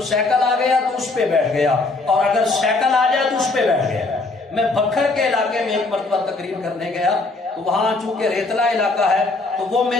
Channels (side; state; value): right; quieter; 3.4 dB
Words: سائیکل آ گیا تو اس پہ بیٹھ گیا، اور اگر سائیکل آ جائے تو اس پہ بیٹھ گیا۔ میں بکھر کے علاقے میں ایک مرتبہ تقریر کرنے گیا تو وہاں چونکہ ریتلا علاقہ ہے تو وہ